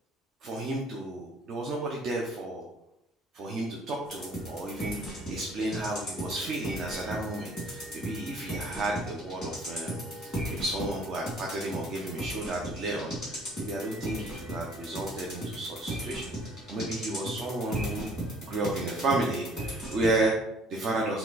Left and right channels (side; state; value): both; normal; correlation 0.57